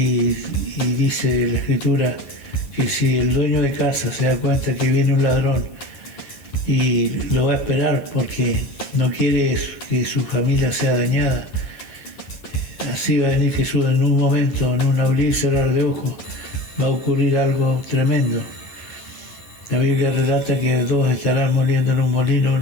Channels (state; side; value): late; right; 9.7 ms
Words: dice la Escritura que si el dueño de casa se da cuenta que viene un ladrón y lo va a esperar porque no quiere que su familia sea dañada, así va a venir Jesús en un momento, en un abrir y cerrar de ojos, va a ocurrir algo tremendo. La Biblia relata que dos estarán moliendo en un molino,